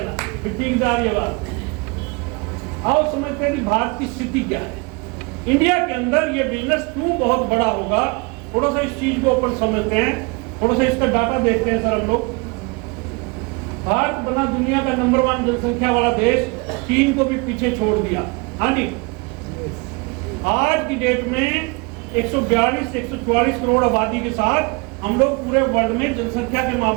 आओ समझते हैं कि भारत की स्थिति क्या है। इंडिया के अंदर ये बिजनेस क्यों बहुत बड़ा होगा, थोड़ा सा इस चीज को ऊपर समझते हैं, थोड़ा सा इसका डाटा देखते हैं सर हम लोग। भारत बना दुनिया का नंबर 1 जनसंख्या वाला देश, चीन को भी पीछे छोड़ दिया। हाँ जी, आज की डेट में 142-144 करोड़ आबादी के साथ हम लोग पूरे वर्ल्ड में जनसंख्या के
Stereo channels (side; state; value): left; quieter; 29.0 dB